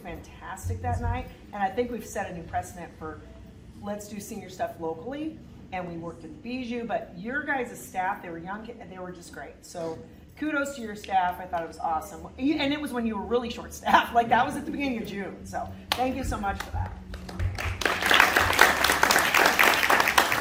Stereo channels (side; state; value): both; identical; correlation 1.00